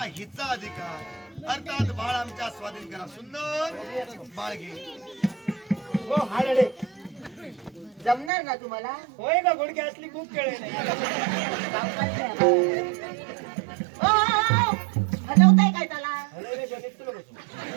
हिचा अधिकार. अर्थात बाळ आमच्या स्वाधीन करा. सुंदर बाळ घे. हो हाडडे जमणार ना तुम्हाला? होय का गुडघे असली खूप खेळ नाही. हलवताय काय त्याला? हलवले जगत तुला बसू.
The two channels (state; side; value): drops out; left; at 8.3 s